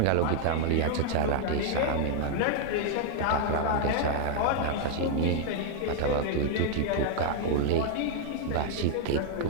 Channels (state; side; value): different; both; correlation 0.00